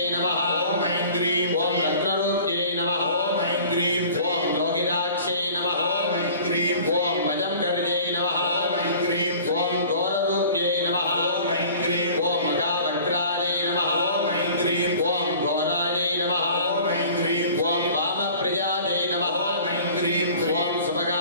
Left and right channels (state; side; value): inverted; both; correlation -0.46